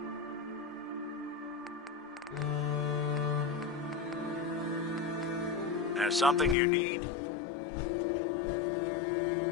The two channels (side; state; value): right; drops out; at 6.6 s